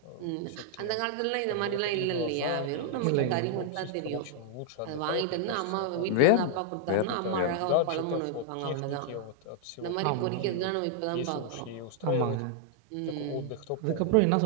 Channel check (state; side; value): different; both; correlation 0.00